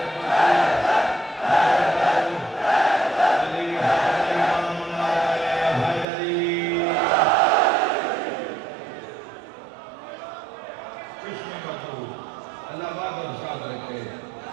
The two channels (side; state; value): left; drops out; at 6.1 s